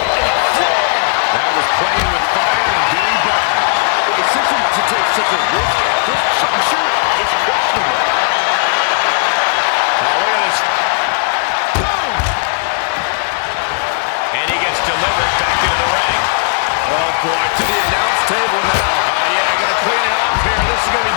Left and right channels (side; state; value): right; silent; digital silence